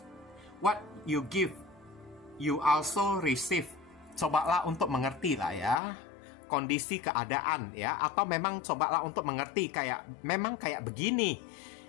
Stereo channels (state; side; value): drops out; right; at 5.8 s